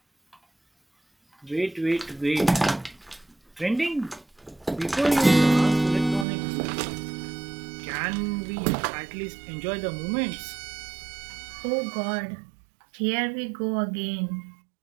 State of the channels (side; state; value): left; drops out; at 6.2 s